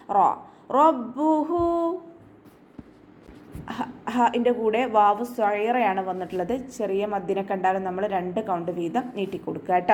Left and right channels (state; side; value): identical; both; correlation 1.00